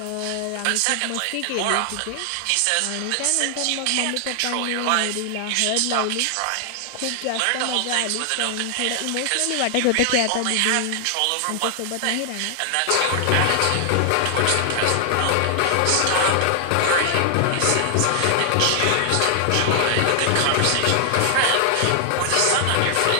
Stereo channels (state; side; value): different; both; correlation 0.00